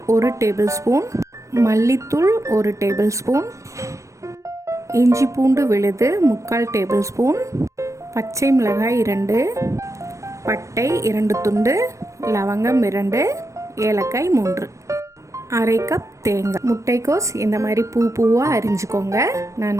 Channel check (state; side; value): late; left; 0.15 ms